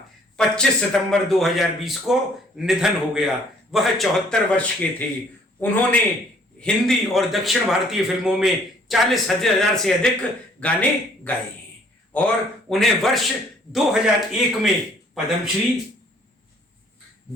25 सितंबर 2020 को निधन हो गया। वह 74 वर्ष के थे। उन्होंने हिंदी और दक्षिण भारतीय फिल्मों में 40,000 से अधिक गाने गाए हैं और उन्हें वर्ष 2001 में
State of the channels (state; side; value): normal; both; correlation 0.60